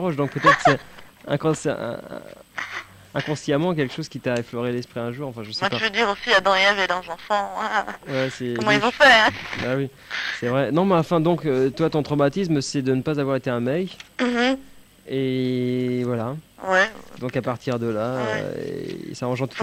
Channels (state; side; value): identical; both; correlation 1.00